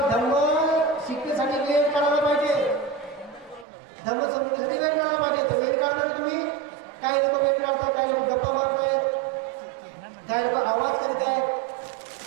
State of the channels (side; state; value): left; drops out; at 3.7 s